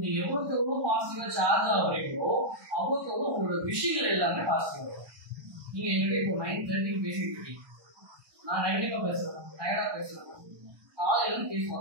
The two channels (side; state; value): left; late; 1.1 ms